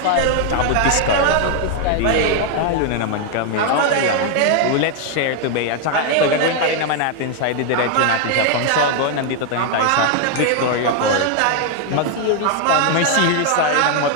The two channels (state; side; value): different; both; correlation 0.01